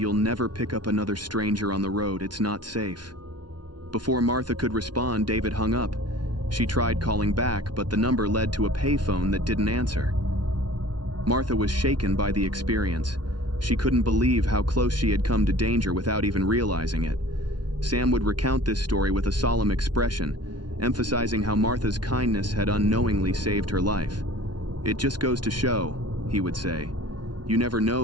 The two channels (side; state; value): left; late; 0.70 ms